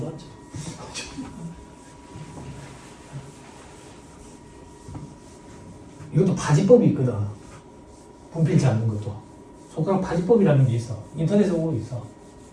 이것도 파지법이 있거든. 분필 잡는 것도. 손가락 파지법이라는 게 있어. 인터넷에 오고 있어.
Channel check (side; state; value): both; identical; correlation 1.00